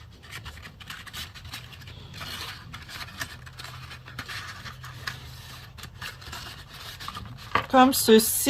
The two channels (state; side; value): identical; both; correlation 1.00